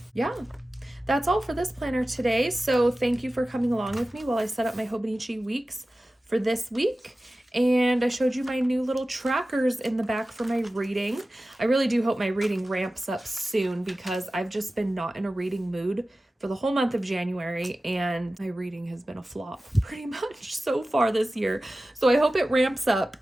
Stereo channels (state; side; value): normal; both; correlation 0.95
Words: Yeah, that's all for this planner today. So thank you for coming along with me while I set up my Hobonichi weeks for this week. And I showed you my new little trackers in the back for my reading. I really do hope my reading ramps up soon because I've just been not in a reading mood for the whole month of January, and my reading has been a flop pretty much so far this year. So I hope it ramps up